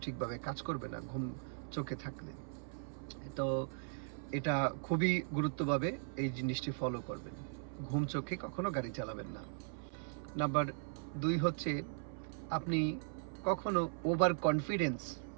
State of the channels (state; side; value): silent; left; 52 dB below the other